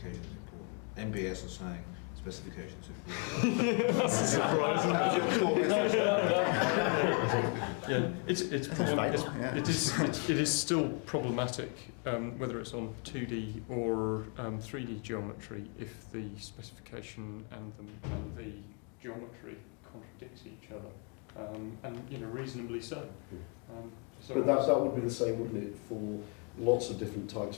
is important. MBS are saying specifications. That was your core message. Yeah, it's it is still problematic whether it's on 2D or 3D geometry if the specification and the geometry contradict each other, and reasonably so. So But that would be the same, wouldn't it, for lots of different types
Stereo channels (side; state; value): right; quieter; 37.4 dB